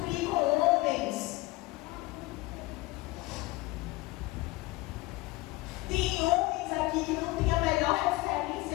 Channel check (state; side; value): quieter; right; 20.9 dB